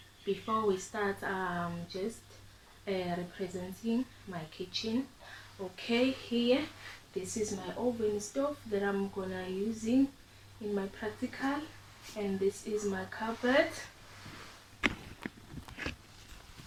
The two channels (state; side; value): identical; both; correlation 1.00